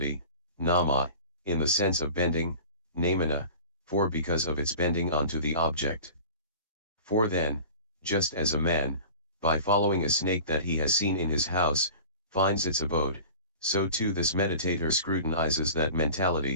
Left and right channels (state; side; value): inverted; both; correlation -0.39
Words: nama, in the sense of bending, namana, for because of its bending onto the object. For then, just as a man, by following a snake that he has seen in his house, finds its abode, so too this meditator scrutinizes that